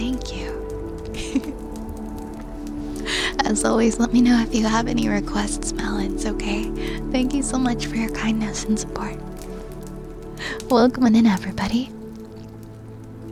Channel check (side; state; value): both; identical; correlation 1.00